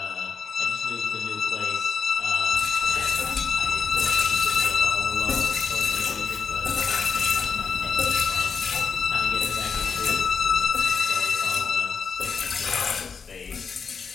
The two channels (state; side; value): quieter; right; 5.8 dB